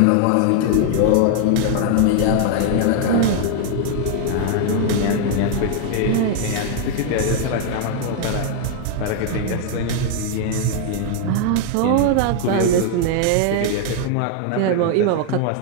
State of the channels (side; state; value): both; different; correlation 0.00